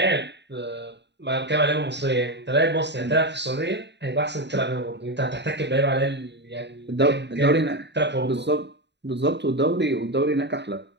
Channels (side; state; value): left; late; 0.50 ms